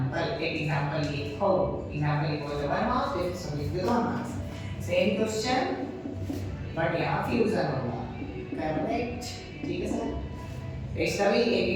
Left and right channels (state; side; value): identical; both; correlation 1.00